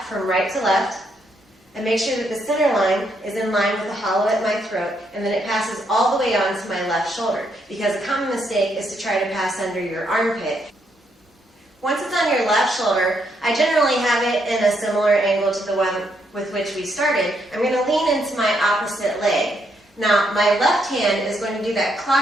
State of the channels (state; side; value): normal; both; correlation 0.76